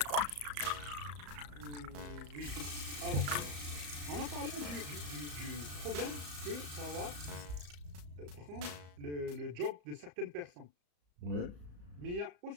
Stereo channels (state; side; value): late; left; 34 ms